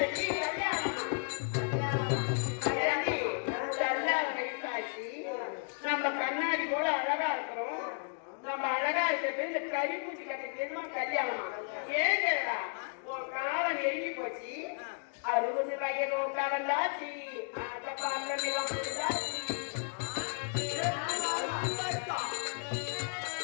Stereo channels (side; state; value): right; silent; 55 dB below the other